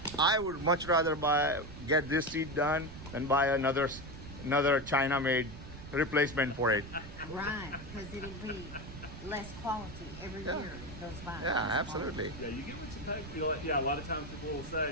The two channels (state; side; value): noise; right; rumble, 13 dB below the sound